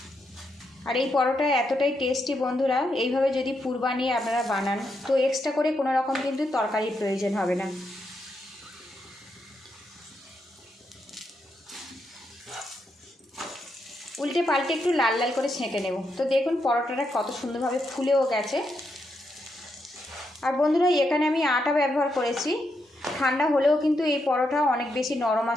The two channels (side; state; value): both; normal; correlation 0.81